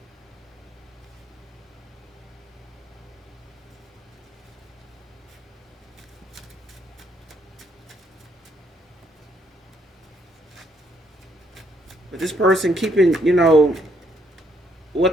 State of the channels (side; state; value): both; normal; correlation 0.70